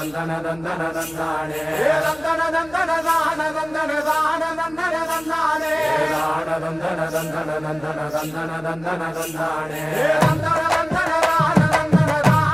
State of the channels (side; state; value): left; noise; hum, 23 dB below the sound